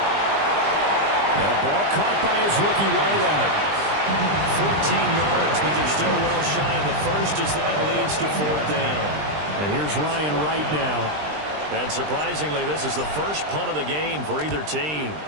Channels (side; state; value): left; late; 20 ms